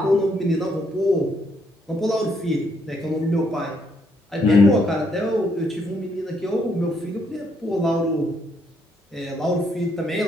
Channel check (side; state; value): both; normal; correlation 0.73